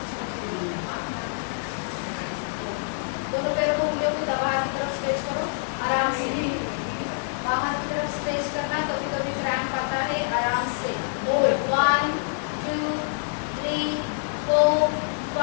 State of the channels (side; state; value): right; silent; digital silence